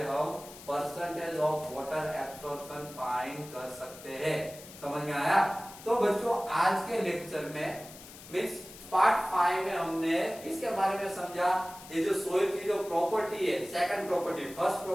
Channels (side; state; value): left; noise; hiss, 17 dB below the sound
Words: हम percentage of water absorption find कर सकते हैं, समझ में आया। तो बच्चों आज के लेक्चर में मीन्स पार्ट 5 में हमने इसके बारे में समझा, ये जो सोइल की जो प्रॉपर्टी है, सेकंड प्रॉपर्टी, फर्स्ट